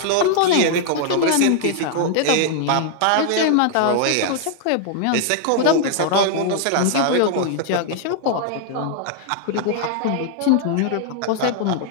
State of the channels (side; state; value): both; different; correlation 0.00